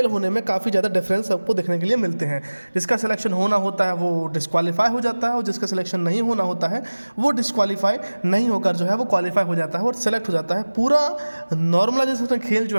होने में काफ़ी ज़्यादा डिफरेंस आपको देखने के लिए मिलते हैं। जिसका सिलेक्शन होना होता है वो डिस्क्वालीफाई हो जाता है और जिसका सिलेक्शन नहीं होना होता है वो डिस्क्वालीफाई नहीं होकर जो है वो क्वालिफाई हो जाता है और सेलेक्ट हो जाता है। पूरा नॉर्मलाइजेशन का खेल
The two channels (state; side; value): inverted; both; correlation -1.00